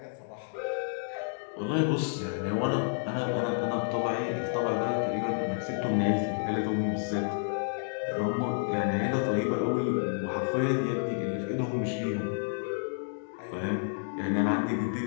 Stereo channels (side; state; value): right; silent; digital silence